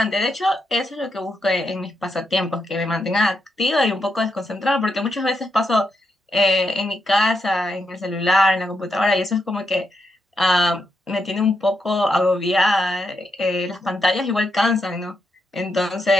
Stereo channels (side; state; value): both; normal; correlation 0.82